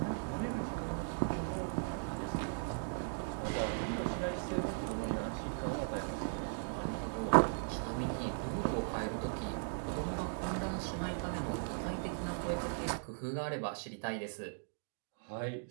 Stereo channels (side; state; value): left; silent; digital silence